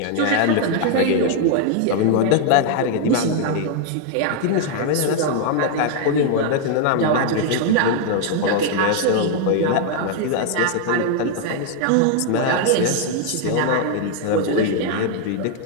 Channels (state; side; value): different; both; correlation 0.00